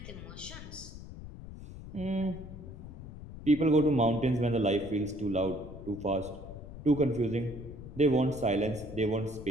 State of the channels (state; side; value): noise; left; rumble, 12 dB below the sound